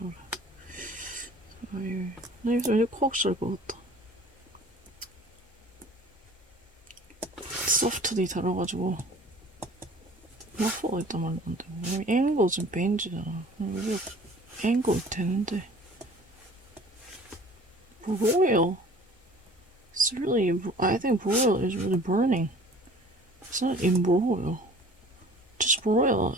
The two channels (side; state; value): both; normal; correlation 0.47